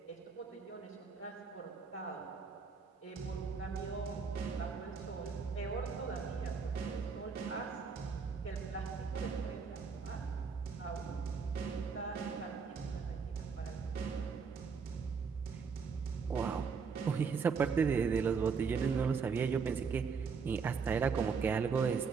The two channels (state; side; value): quieter; left; 5.5 dB